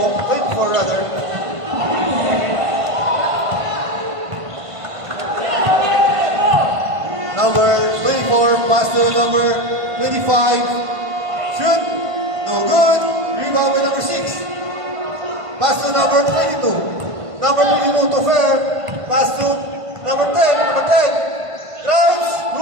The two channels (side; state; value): left; late; 1.5 ms